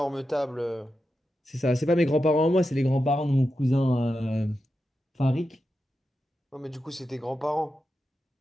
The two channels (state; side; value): normal; both; correlation 0.89